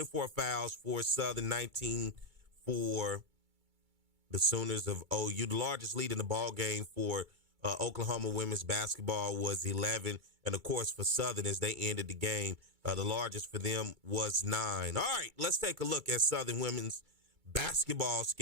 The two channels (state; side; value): late; left; 2.3 ms